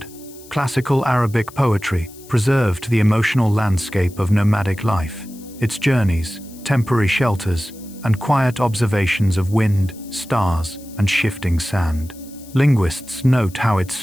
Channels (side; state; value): left; noise; hiss, 22 dB below the sound